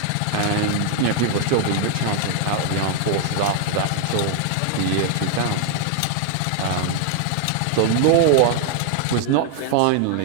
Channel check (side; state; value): both; different; correlation 0.00